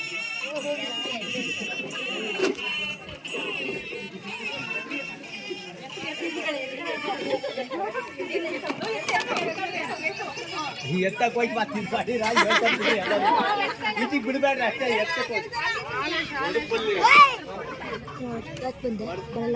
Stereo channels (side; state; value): both; identical; correlation 1.00